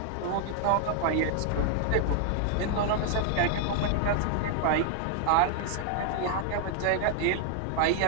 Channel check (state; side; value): different; both; correlation 0.00